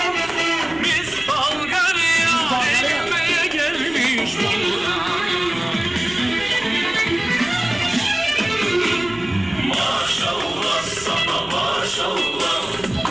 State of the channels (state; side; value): noise; right; rumble, 22 dB below the sound